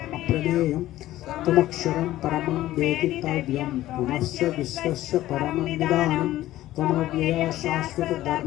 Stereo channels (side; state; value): right; quieter; 14.9 dB